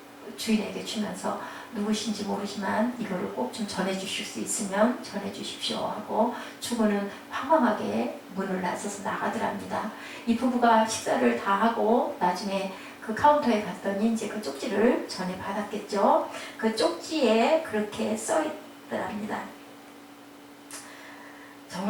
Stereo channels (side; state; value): both; identical; correlation 1.00